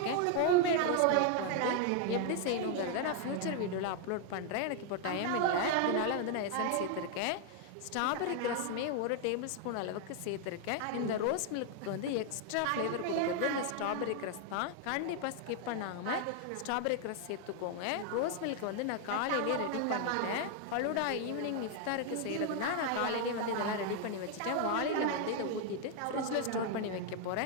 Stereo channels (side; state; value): both; different; correlation 0.00